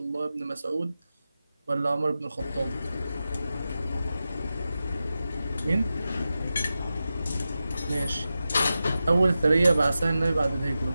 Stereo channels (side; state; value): both; inverted; correlation -0.92